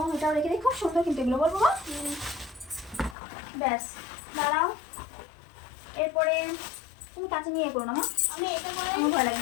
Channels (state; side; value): drops out; right; at 3.2 s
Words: এটাও রেখে দিই। খুব সুন্দর কিন্তু এগুলো বলবো বাবা। ব্যাস দাঁড়াও। এরপরে তুমি কাছে নিয়ে করো না মা। আমি এটা করে আমার ভয় লাগে।